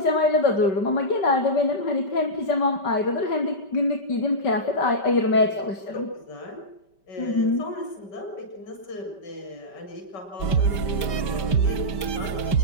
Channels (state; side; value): late; right; 5.1 ms